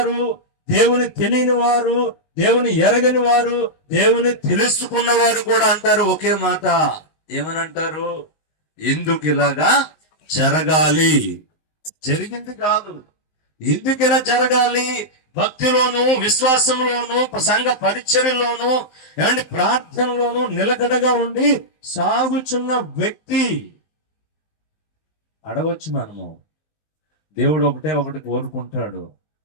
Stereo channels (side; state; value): right; late; 19 ms